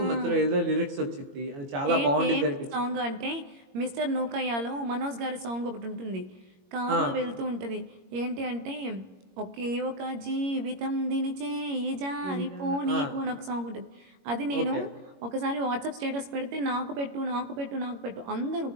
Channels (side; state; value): left; late; 21 ms